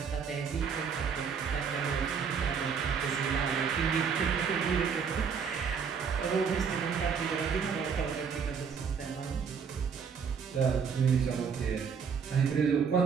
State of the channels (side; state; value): left; quieter; 6.4 dB